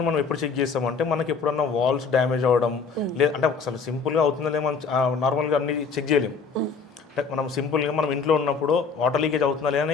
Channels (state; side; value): quieter; right; 5.3 dB